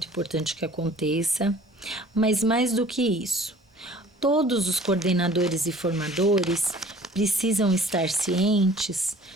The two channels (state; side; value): normal; both; correlation 0.50